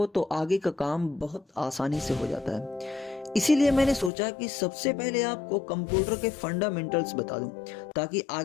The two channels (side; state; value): right; drops out; at 4.1 s